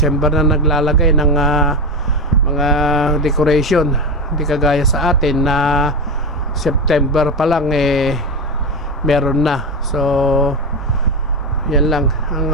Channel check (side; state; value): both; normal; correlation 0.17